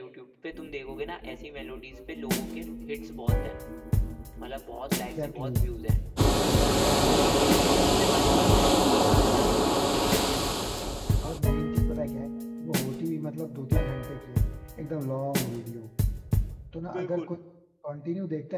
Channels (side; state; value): both; identical; correlation 1.00